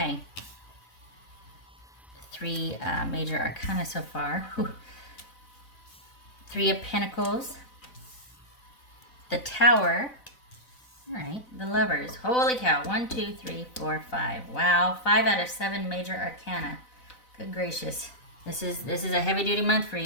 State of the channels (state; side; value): late; right; 4.0 ms